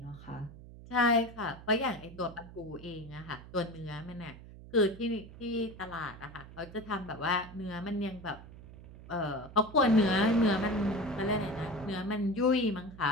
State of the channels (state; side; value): noise; right; hum, 17 dB below the sound